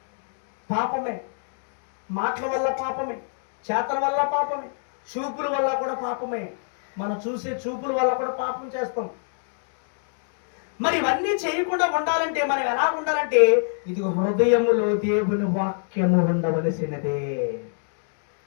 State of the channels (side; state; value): right; silent; digital silence